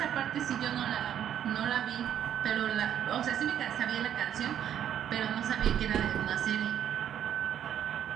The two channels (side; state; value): left; quieter; 10.1 dB